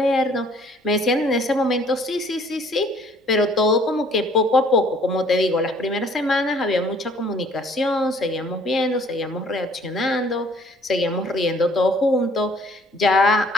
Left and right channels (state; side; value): normal; both; correlation 0.58